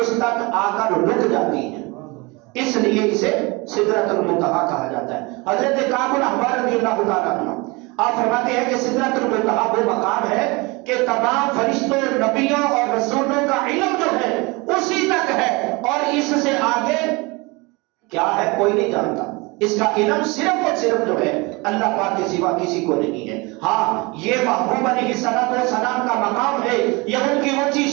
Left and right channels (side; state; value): left; quieter; 26.0 dB